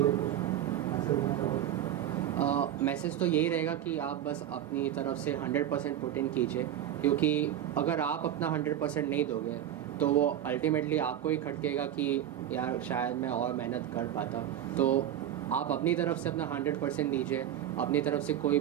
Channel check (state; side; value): quieter; left; 11.1 dB